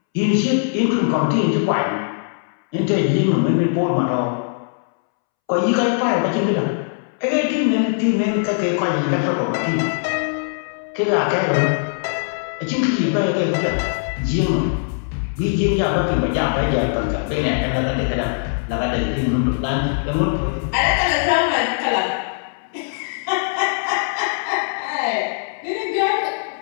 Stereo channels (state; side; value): silent; right; 65 dB below the other